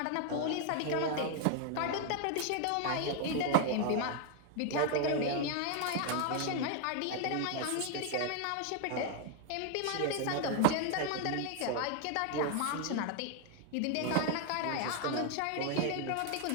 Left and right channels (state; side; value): different; both; correlation 0.00